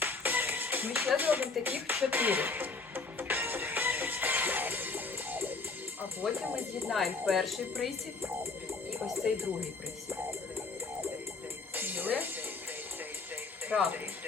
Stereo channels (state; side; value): quieter; right; 4.2 dB